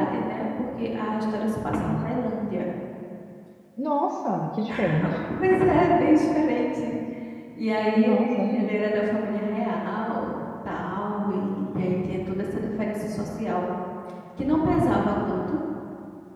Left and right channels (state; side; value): identical; both; correlation 1.00